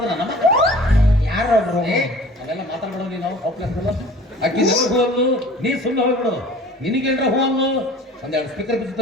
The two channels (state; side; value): normal; both; correlation 0.46